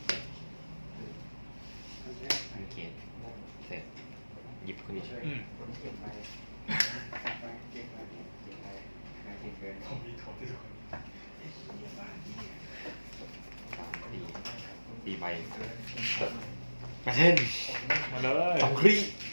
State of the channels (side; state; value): both; inverted; correlation -1.00